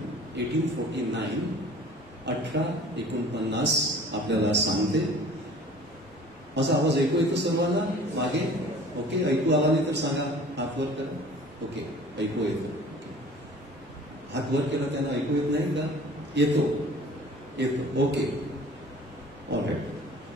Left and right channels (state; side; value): normal; both; correlation 0.47